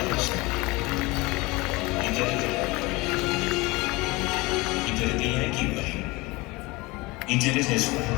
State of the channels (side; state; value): right; quieter; 23.3 dB